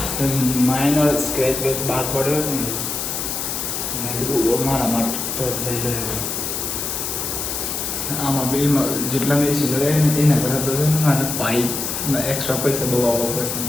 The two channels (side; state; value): left; noise; hiss, 3 dB below the sound